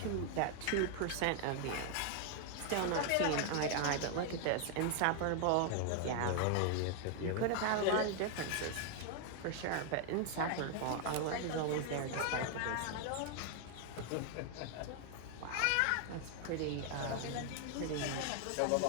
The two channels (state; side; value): different; both; correlation 0.00